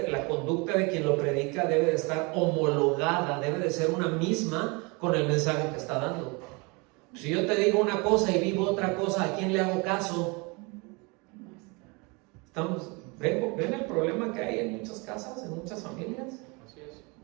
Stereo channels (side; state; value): left; quieter; 28.8 dB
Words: la conducta de quien lo predica debe de estar homologada, debe de ser una misma con el mensaje que está dando. Si yo te digo una cosa y vivo otra cosa, ¿a quién le hago caso? ¿Ven el problema que hay en muchas casas, en muchas familias? Así es.